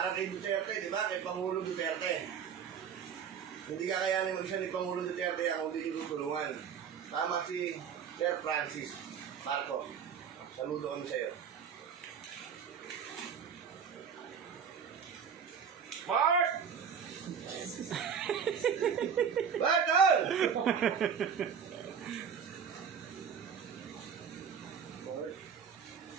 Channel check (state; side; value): quieter; left; 7.1 dB